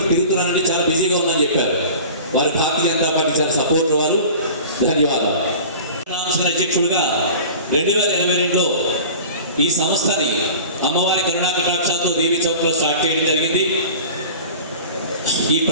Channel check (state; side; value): inverted; both; correlation -0.38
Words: తిరుగుతున్నానని చాలా బిజీగా ఉన్నానని చెప్పారు. వారి భారతీయ జనతా పార్టీ చాలా సపోర్ట్ వారు. ధన్యవాదాలు. అధ్యక్షుడిగా 2022లో ఈ సంస్థని అమ్మవారి కరుణా కటాక్షాలతో దేవి చౌక్లో స్టార్ట్ చేయడం జరిగింది. ఈ